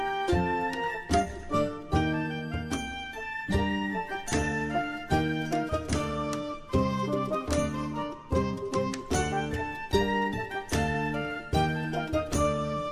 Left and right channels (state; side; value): identical; both; correlation 1.00